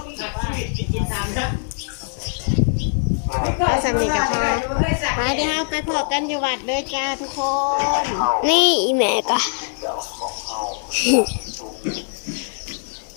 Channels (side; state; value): right; silent; 64 dB below the other